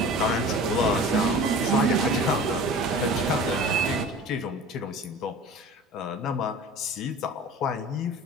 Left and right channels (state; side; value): normal; both; correlation 0.40